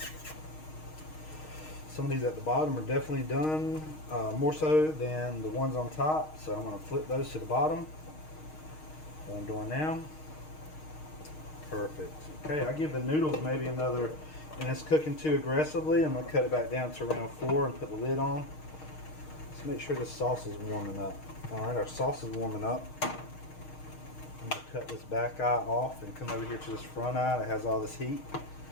Some of these at the bottom are definitely done, more so than the ones on top. So I'm going to flip those to the bottom. What I'm doing now. Perfect. Okay, I give the noodles maybe another, and it's cooking too aggressively. I'm going to cut it back down to around 4 and put the lid on. Let's make sure the sauce is warming up. Alright, our sauce is warming up. I'm going to cut this back eye off and come over here to this front eye that has all this heat.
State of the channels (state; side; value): late; right; 6.4 ms